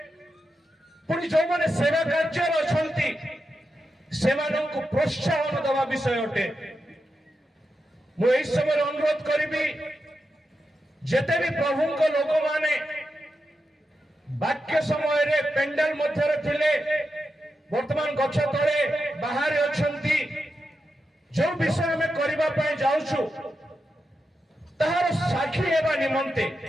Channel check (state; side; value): normal; both; correlation 0.88